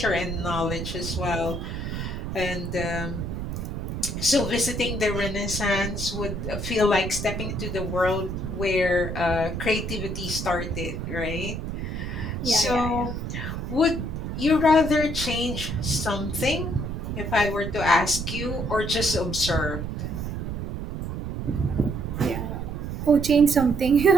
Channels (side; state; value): right; noise; rumble, 4 dB below the sound